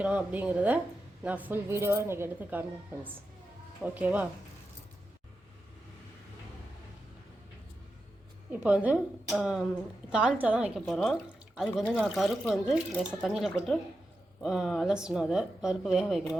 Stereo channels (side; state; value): both; normal; correlation 0.89